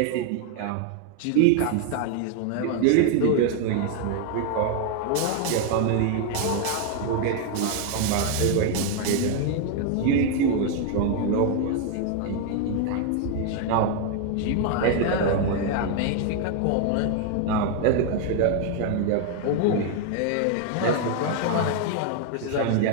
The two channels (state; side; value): different; both; correlation 0.00